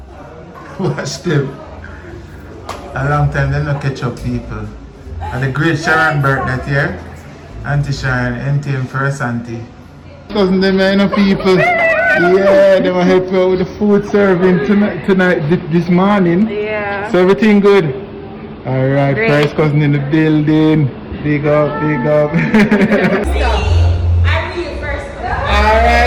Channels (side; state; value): both; identical; correlation 1.00